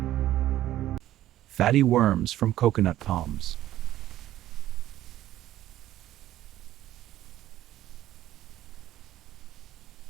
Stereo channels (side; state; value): left; quieter; 13.5 dB